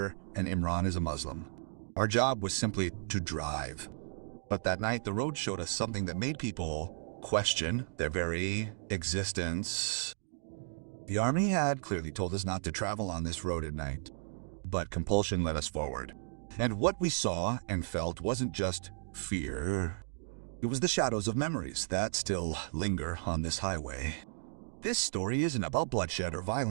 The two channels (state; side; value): silent; left; digital silence